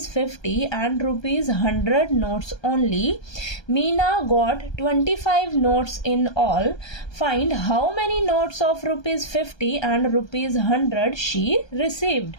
50 and rupees 100 notes only. Meena got 25 notes in all. Find how many notes of rupees 50 and rupees 100 she received.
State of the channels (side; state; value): right; late; 1.3 ms